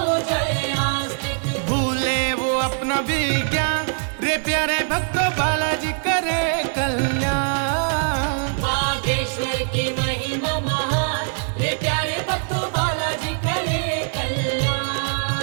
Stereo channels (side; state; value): left; silent; 58 dB below the other